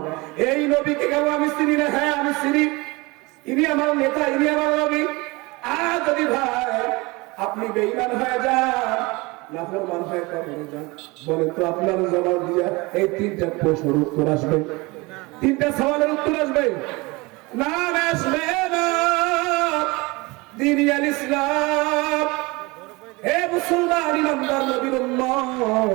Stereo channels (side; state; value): left; quieter; 24.4 dB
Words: এই নবীকে কেন আমি চিনি না? হ্যাঁ আমি চিনি, ইনি আমার নেতা, ইনি আমার নবী। আর যদি ভাই আপনি বেঈমান হয়ে যান, নাফরমান হয়ে কবরে যান, বলেন তো আপনার জবাব দিয়া এই তিনটা প্রশ্নের উত্তর আসবে? তিনটা সওয়ালের উত্তর আসবে? না আসবে না। আল ইসলাম, হে মুসলমান ইমানদার নবীর